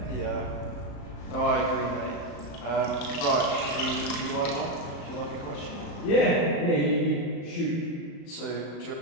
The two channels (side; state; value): right; late; 36 ms